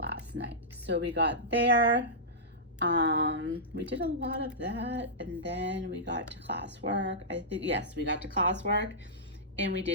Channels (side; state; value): both; normal; correlation -0.15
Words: night. So we got there. We did a lot of that, and then we got to classwork. I think, yes, we got to classwork, and we